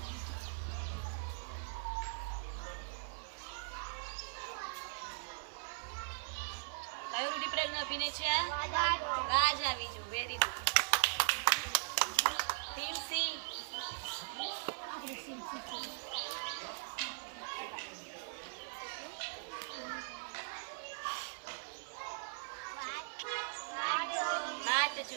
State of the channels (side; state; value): left; silent; 51 dB below the other